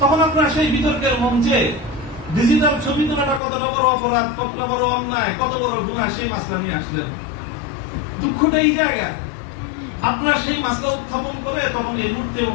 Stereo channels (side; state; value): right; drops out; at 3.4 s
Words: তখন আপনারা সেই বিতর্কের মঞ্চে ডিজিটাল ছবি তোলাটা কতটা বড় অপরাধ, কতটা বড় অন্যায়, কত বড় গুনাহ, সেই মাসলা নিয়ে আসলেন। দুঃখটা এই জায়গায়, আপনারা সেই মাসলা উত্থাপন করে তখন এই মূর্তি